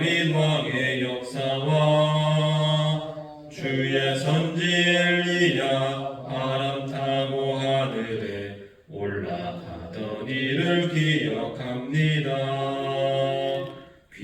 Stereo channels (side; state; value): both; identical; correlation 1.00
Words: 왕의 역사와 주의 선지 엘리야 바람 타고 하늘에 올라가던 일을 기억합니다.